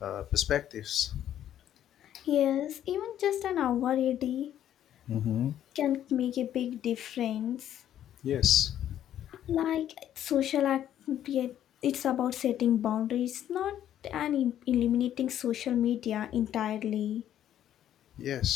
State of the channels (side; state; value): right; quieter; 11.0 dB